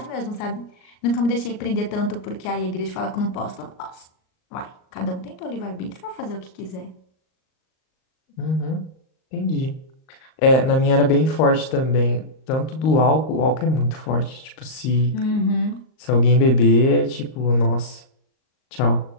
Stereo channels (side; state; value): right; late; 38 ms